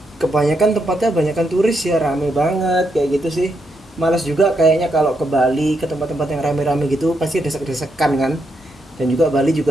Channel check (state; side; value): normal; both; correlation 0.80